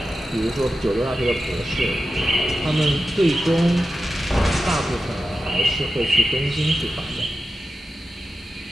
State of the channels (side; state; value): both; normal; correlation 0.91